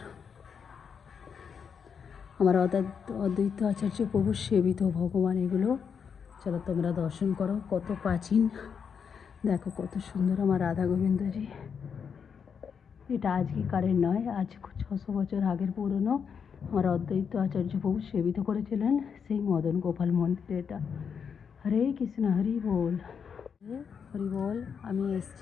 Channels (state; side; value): quieter; right; 6.7 dB